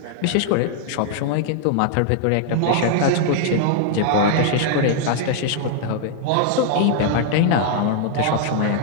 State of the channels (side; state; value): both; different; correlation 0.00